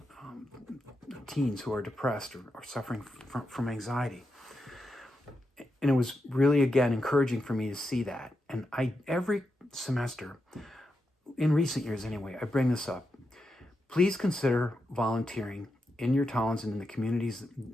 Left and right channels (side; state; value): both; normal; correlation 0.87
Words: teens who are depressed or suffering from anxiety. And it was really, again, encouraging for me to see that. And every semester, in recent years anyway, I bring this up. Please consider volunteering in your towns and in the communities